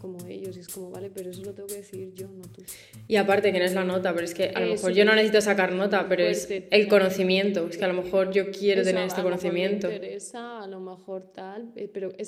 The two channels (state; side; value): identical; both; correlation 1.00